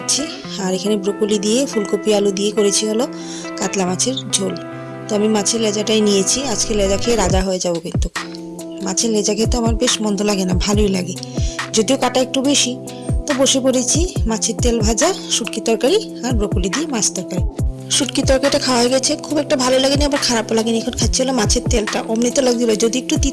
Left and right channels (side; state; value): both; identical; correlation 1.00